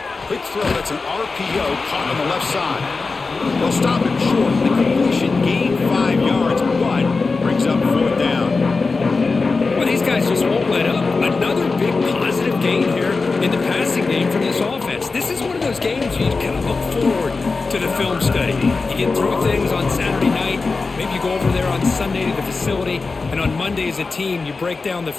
Quick throw. That's an RPO caught on the left side. They'll stop him short. The completion gained 5 yards, but brings up 4th down. Well, these guys just won't let up. Another big positive gain here in the passing game from this offense. This is one of those games you kind of look forward to the film study. You get through things on Saturday night. Maybe you go over there on Sunday to the facility, and on Monday as a team, you break down the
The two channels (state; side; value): quieter; right; 4.1 dB